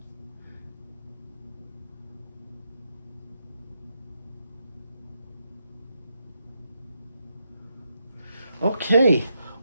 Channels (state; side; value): inverted; both; correlation -0.82